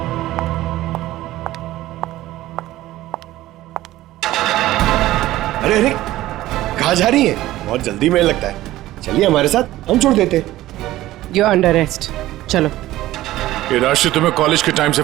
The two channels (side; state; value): left; quieter; 15.7 dB